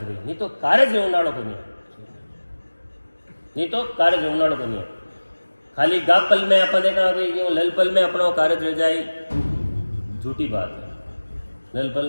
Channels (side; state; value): both; inverted; correlation -1.00